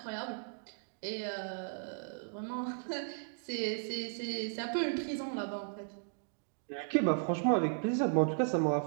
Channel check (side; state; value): left; silent; digital silence